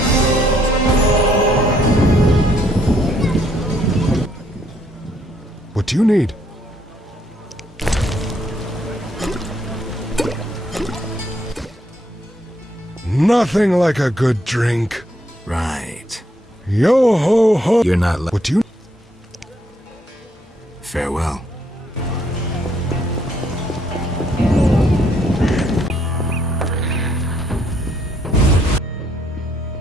What do you need? Nothing like a good drink. Right. Yo ho ho. You're not What do you... Farewell.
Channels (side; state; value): both; normal; correlation 0.71